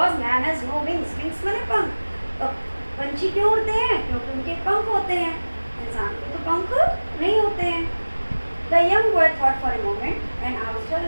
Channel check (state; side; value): inverted; both; correlation -1.00